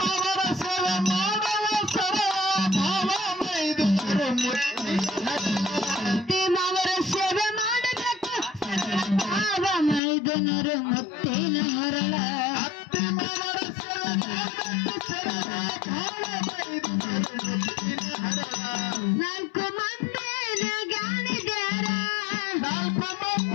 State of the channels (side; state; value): right; drops out; at 10.0 s